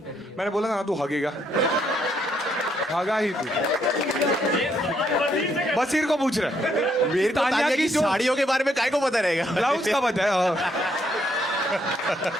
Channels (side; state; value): both; normal; correlation 0.73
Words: रही है. मैंने बोला ना तू हगेगा. हगा ही तू. बसीर को पूछ रहा है. मेरे को तान्या तान्या की की जो- साड़ियों के बारे में काय को पता रहेगा. ब्लाउज का बताया.